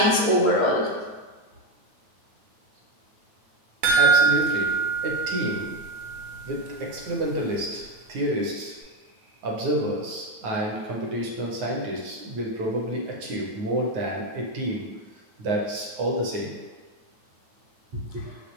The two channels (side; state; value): left; late; 9.4 ms